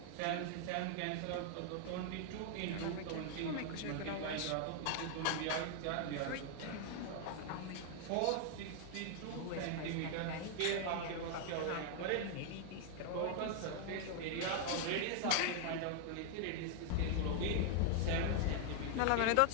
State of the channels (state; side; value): different; both; correlation 0.00